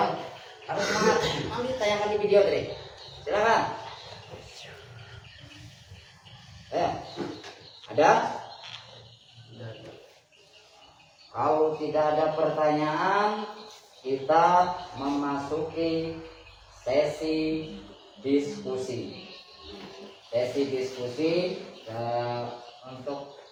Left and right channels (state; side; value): identical; both; correlation 1.00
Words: harus semangat. Nanti ditanyakan di video tadi. Silakan. Ya. Ada? Kalau tidak ada pertanyaan, kita memasuki sesi diskusi. Untuk